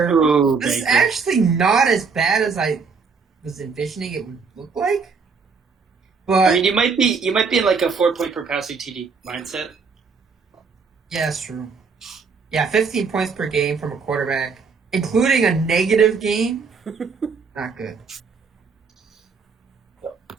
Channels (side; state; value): left; quieter; 5.2 dB